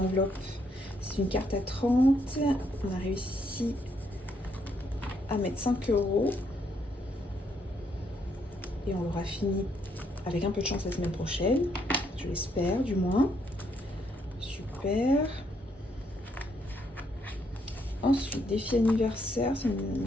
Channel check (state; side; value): normal; both; correlation 0.73